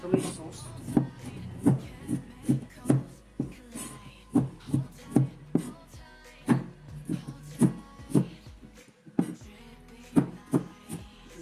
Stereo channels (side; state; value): both; identical; correlation 1.00